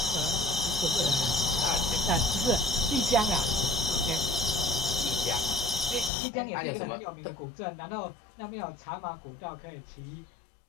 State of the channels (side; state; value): right; drops out; at 6.1 s